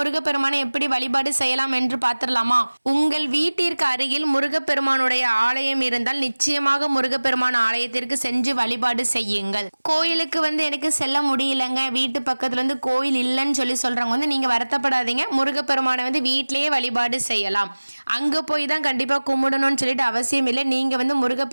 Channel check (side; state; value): both; inverted; correlation -1.00